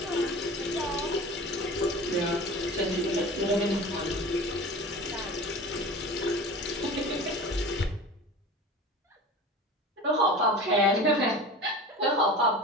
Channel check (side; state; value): both; normal; correlation 0.36